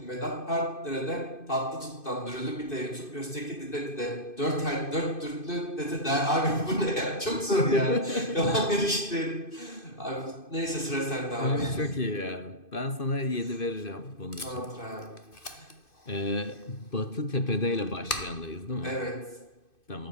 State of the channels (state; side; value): late; right; 2.5 ms